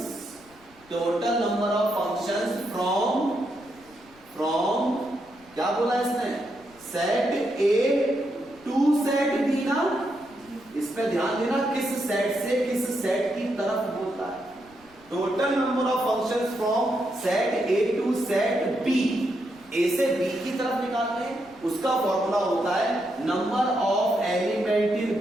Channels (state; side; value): noise; left; rumble, 28 dB below the sound